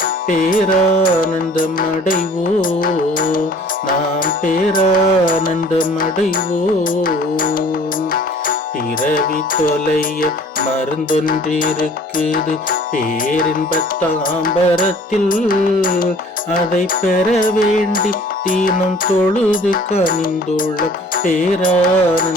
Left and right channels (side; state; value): both; normal; correlation 0.51